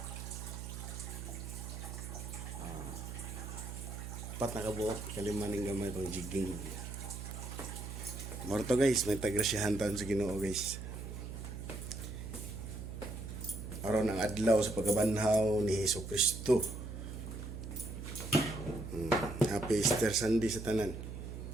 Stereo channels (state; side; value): noise; right; hum, 8 dB below the sound